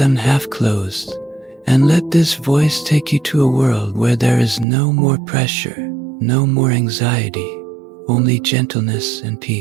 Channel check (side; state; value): left; drops out; at 4.7 s